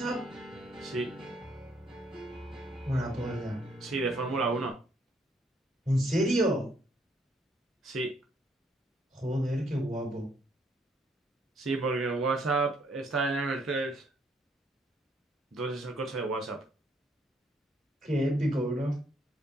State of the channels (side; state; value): both; normal; correlation 0.69